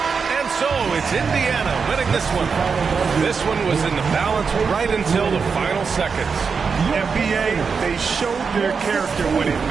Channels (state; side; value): quieter; left; 5.5 dB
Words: And so it's Indiana winning this one. This one was in the balance right until the final seconds. NBA, they showed their character when it